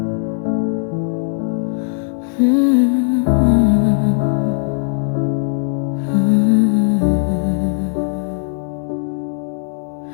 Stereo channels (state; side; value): silent; right; 67 dB below the other